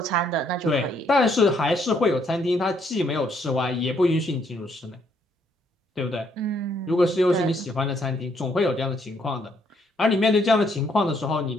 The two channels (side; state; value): both; normal; correlation 0.70